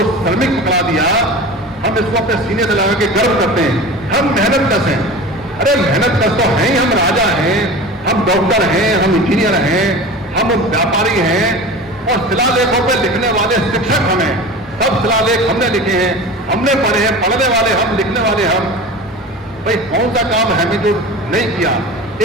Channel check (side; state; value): both; normal; correlation 0.34